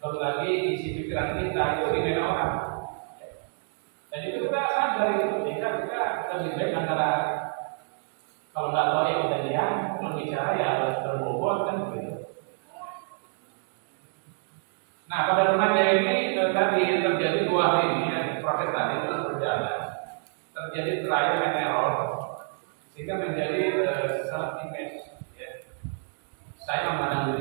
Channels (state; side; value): silent; left; 59 dB below the other